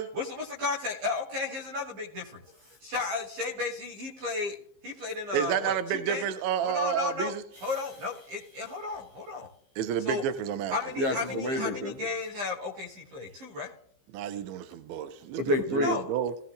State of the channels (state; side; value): late; left; 15 ms